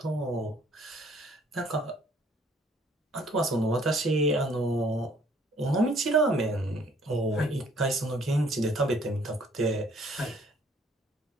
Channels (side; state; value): both; normal; correlation 0.61